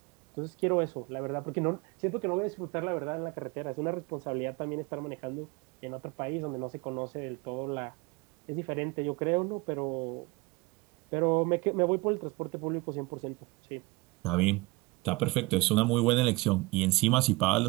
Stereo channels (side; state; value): left; quieter; 23.7 dB